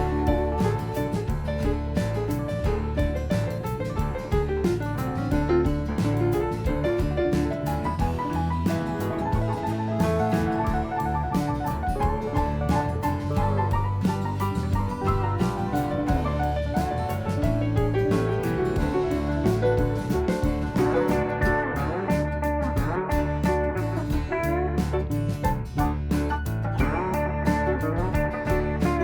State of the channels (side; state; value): both; identical; correlation 1.00